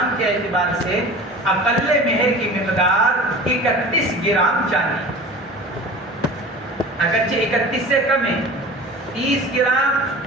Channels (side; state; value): both; normal; correlation 0.38